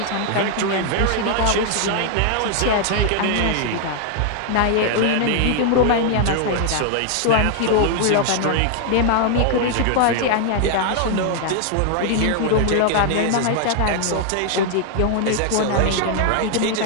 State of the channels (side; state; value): both; different; correlation 0.00